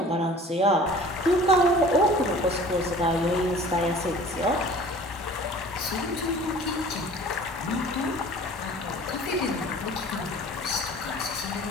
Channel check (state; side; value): normal; both; correlation 0.46